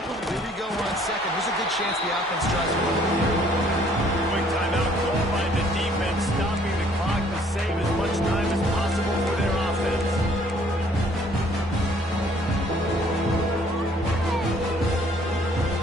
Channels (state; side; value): normal; both; correlation 0.61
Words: Here we go on 2nd. There's a good chance the offense tries to run. Quick timeout called by the defense, stopping the clock to save as much time as possible for their offense.